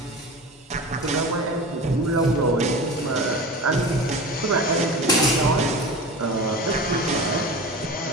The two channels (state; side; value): normal; both; correlation 0.32